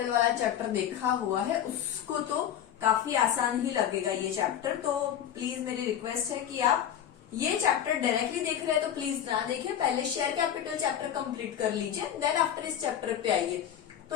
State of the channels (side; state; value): right; quieter; 9.9 dB